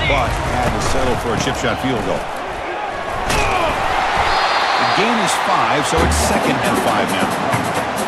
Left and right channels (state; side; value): identical; both; correlation 1.00